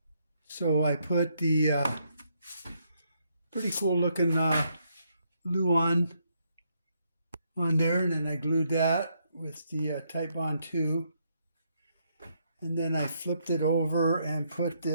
So I put the pretty cool looking Luan on there, and then I glued that with the Type Bond 2, and then I flipped it over and put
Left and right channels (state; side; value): inverted; both; correlation -0.75